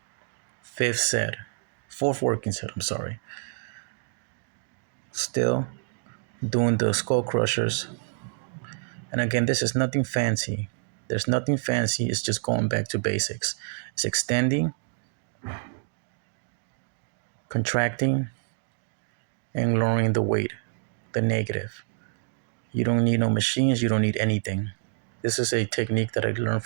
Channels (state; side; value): silent; left; digital silence